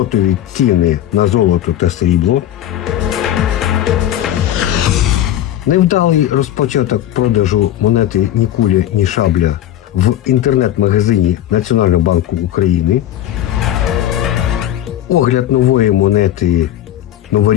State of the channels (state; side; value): quieter; right; 12.1 dB